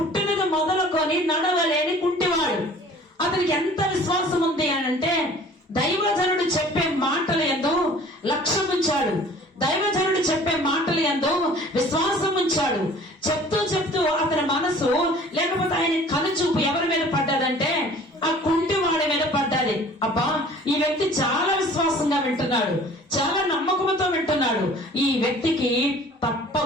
మొదలుకొని నడవలేని కుంటివాడు. అతనికి ఎంత విశ్వాసం ఉంది అనంటే దైవజనుడు చెప్పే మాటల యందు లక్ష్యం ఉంచాడు. దైవజనుడు చెప్పే మాటల యందు విశ్వాసం ఉంచాడు. చెప్తూ అతని మనసు లేకపోతే ఆయన కనుచూపు ఎవరి మీద పడ్డదంటే ఆ కుంటివాడి మీద పడ్డది. అబ్బా, ఈ వ్యక్తి చాలా విశ్వాసంగా వింటున్నాడు, చాలా నమ్మకంతో వింటున్నాడు, ఈ వ్యక్తికి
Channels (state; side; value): normal; both; correlation 0.49